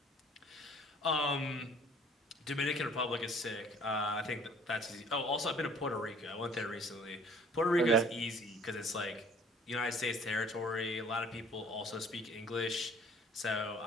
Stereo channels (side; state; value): both; normal; correlation 0.53